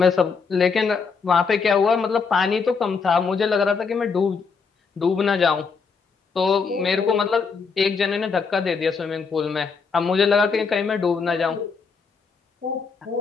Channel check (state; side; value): quieter; right; 5.2 dB